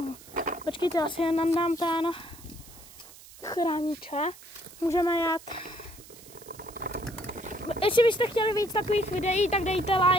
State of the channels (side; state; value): right; noise; hiss, 20 dB below the sound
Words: Počkejte, asi jen nandám ten chrániče. Můžeme jet. Jestli byste chtěli víc takových videí, tak dejte